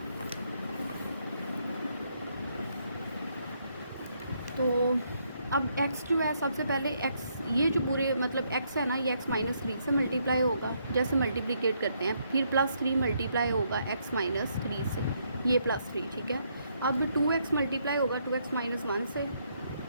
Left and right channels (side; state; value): both; inverted; correlation -0.74